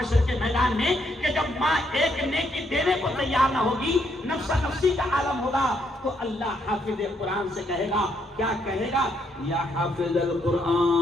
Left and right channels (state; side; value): normal; both; correlation 0.74